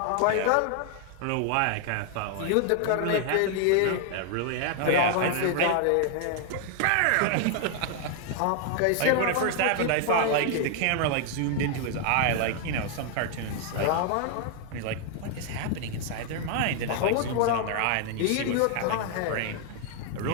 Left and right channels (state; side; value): different; both; correlation 0.00